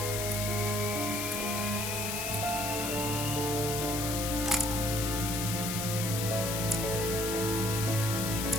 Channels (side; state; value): left; noise; hiss, 2 dB below the sound